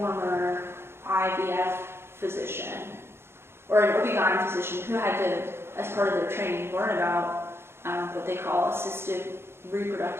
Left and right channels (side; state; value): left; late; 0.12 ms